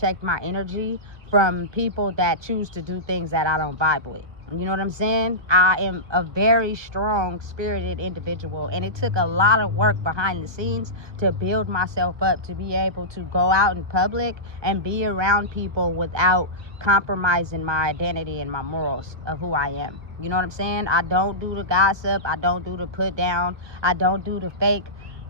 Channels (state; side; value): late; left; 1.2 ms